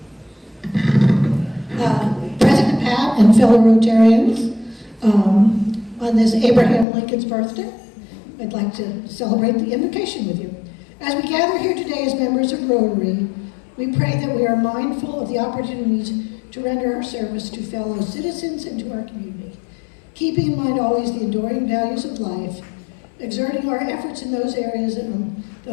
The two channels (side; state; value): right; drops out; at 6.9 s